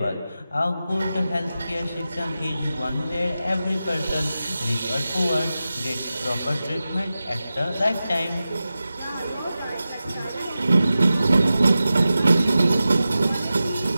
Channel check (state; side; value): inverted; both; correlation -0.94